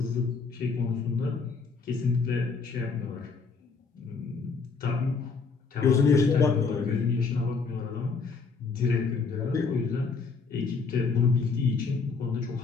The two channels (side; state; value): right; quieter; 4.8 dB